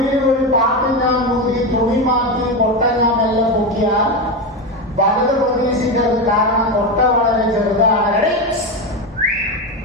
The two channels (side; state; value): both; normal; correlation 0.15